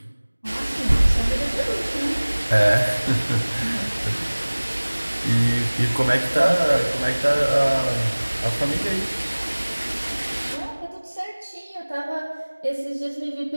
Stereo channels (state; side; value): inverted; both; correlation -1.00